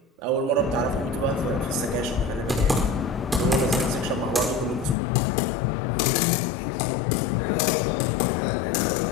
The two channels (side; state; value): right; drops out; at 5.0 s